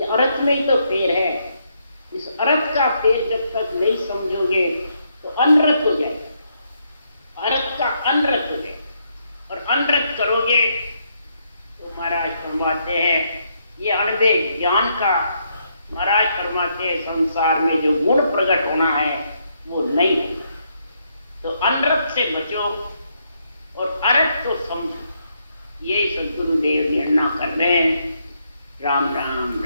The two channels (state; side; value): inverted; both; correlation -0.76